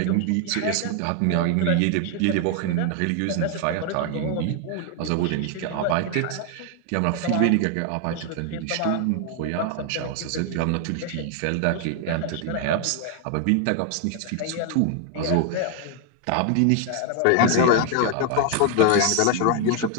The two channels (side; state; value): both; different; correlation 0.00